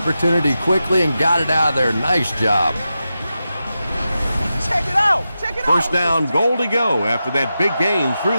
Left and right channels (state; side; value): inverted; both; correlation -0.91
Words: quickly and got it out of there. Nice job. Check it out. Check it out. First down, goal to go after that big gain through